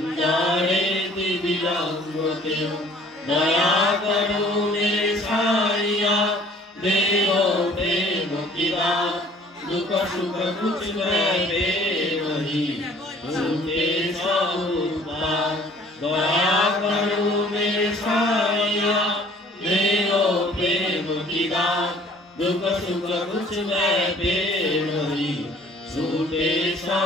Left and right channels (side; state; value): both; normal; correlation 0.54